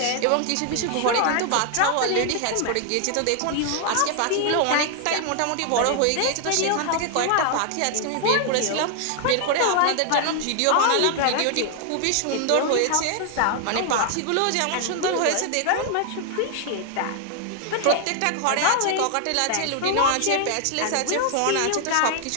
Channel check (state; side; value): different; both; correlation 0.00